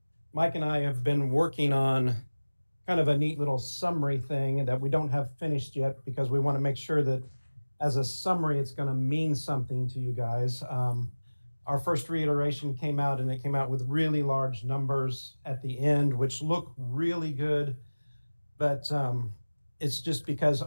Mike and I have been working on kind of a neat little summary thing that we don't have finished yet because we want to make sure that as a summary, it's going to mean something to you guys. Our first reiteration came out and it came out with really large numbers at the end, which look really good. But it's just because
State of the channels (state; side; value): inverted; both; correlation -1.00